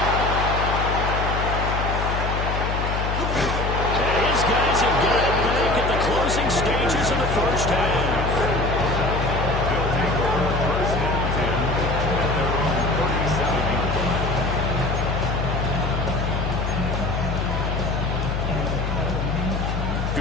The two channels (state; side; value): noise; left; hum, 1 dB below the sound